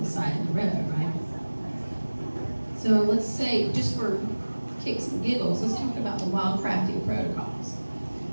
the side of the road, right? So let's say, just for kicks and giggles, let's talk about the wild crafting protocols.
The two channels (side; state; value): both; inverted; correlation -1.00